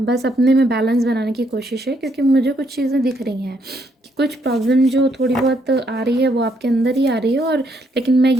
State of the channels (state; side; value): normal; both; correlation 0.73